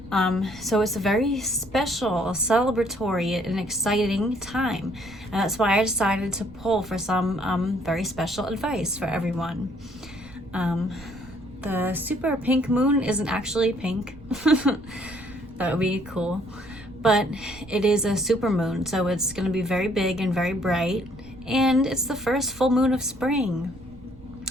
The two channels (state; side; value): noise; right; rumble, 21 dB below the sound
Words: So it's a very special, celebratory, and exciting time. And that's why I decided to pull for some very special advice for everyone. The super pink moon isn't actually pink. That would be cool. But it is a super moon, so it's going to be very big and very bright. And it's the first full moon of spring.